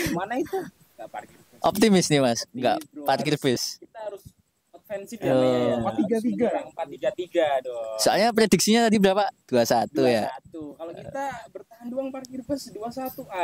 mana itu? Enggak parkir bus. Optimis nih Mas, enggak Bro, parkir bus. Kita harus offensif ya, ya. 4-3-3. 4-3-3 dong. Soalnya prediksinya tadi berapa? 2-1 ya. 2-1. Kalau kita bertahan doang parkir bus 2-1,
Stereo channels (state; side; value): identical; both; correlation 1.00